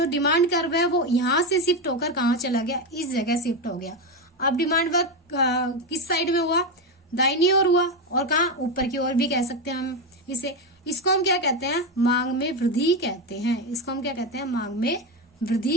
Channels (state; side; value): normal; both; correlation 0.12